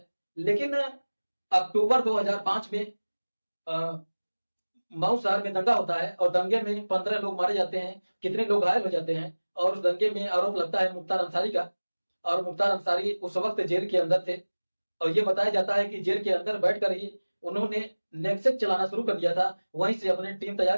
लेकिन अक्टूबर 2005 में मऊ शहर में दंगा होता है और दंगे में 15 लोग मारे जाते हैं, कितने लोग घायल हो जाते हैं। और उस दंगे में आरोप लगता है मुख्तार अंसारी का, और मुख्तार अंसारी उस वक्त जेल के अंदर थे। और ये बताया जाता है कि जेल के अंदर बैठकर ही उन्होंने नेक्सट चलाना शुरू कर दिया था। वहीं से अपने टीम तैयार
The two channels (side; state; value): both; inverted; correlation -1.00